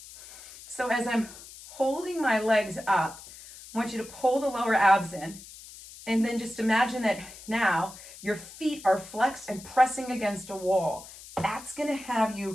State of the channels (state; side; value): noise; left; hiss, 17 dB below the sound